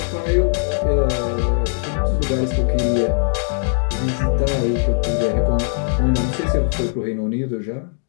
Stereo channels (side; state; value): right; silent; digital silence